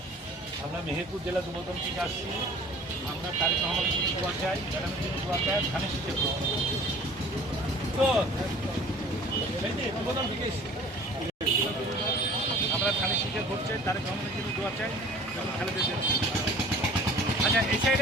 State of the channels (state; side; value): normal; both; correlation 0.48